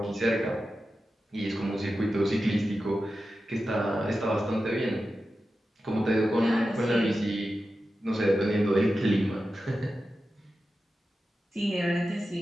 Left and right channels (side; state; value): both; normal; correlation 0.92